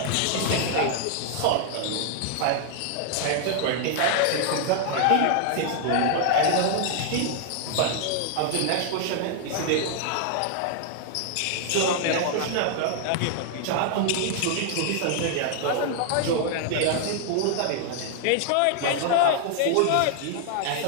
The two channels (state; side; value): different; both; correlation 0.00